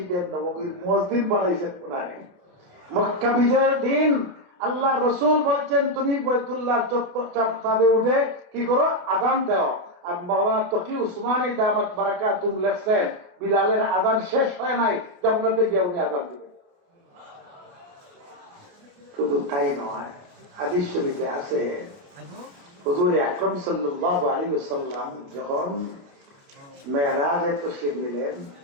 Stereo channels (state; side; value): late; left; 28 ms